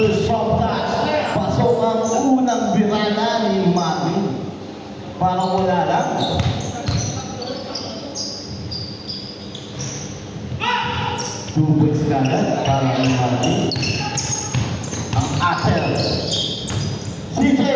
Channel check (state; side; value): identical; both; correlation 1.00